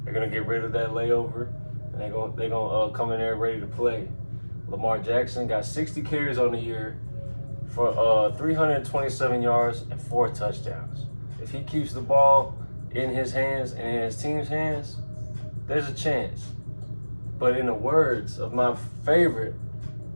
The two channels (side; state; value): both; inverted; correlation -1.00